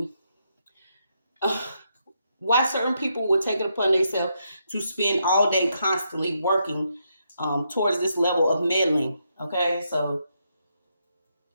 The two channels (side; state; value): both; inverted; correlation -0.80